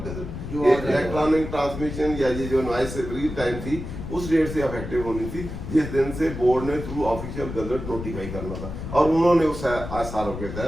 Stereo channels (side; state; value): left; noise; rumble, 8 dB below the sound